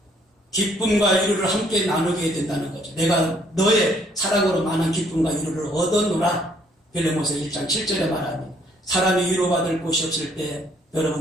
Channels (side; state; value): both; normal; correlation 0.64